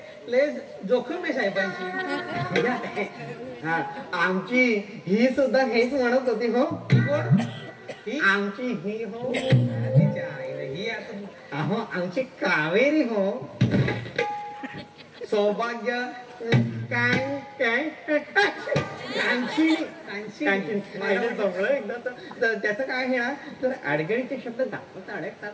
लय जोखीम आहे साहेबांची. हा, आमची ही सुद्धा हेच म्हणत होती हो. आमची ही हो. तिच्या आईला ही आता अहो आमची कावेरी हो. सौभाग्य काय काय कांची एकदा तर त्याचं काय हे ना तर अडगळीचे शब्द दाखवता अडकतात.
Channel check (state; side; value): identical; both; correlation 1.00